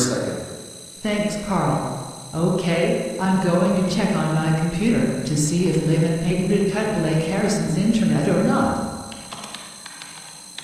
Thanks, Carl. Okay, I'm going to check on my computer to see if Liv and Peyton did cut Blake Harrison's internet or not.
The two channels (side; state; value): both; identical; correlation 1.00